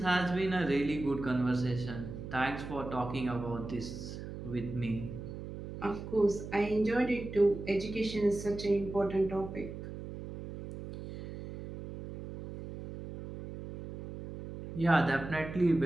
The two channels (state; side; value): noise; right; hum, 10 dB below the sound